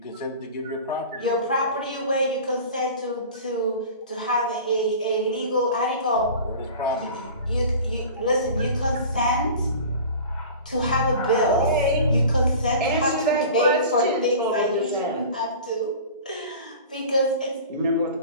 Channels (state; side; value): inverted; both; correlation -0.39